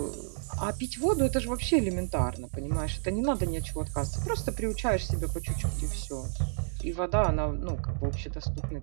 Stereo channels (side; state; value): left; silent; digital silence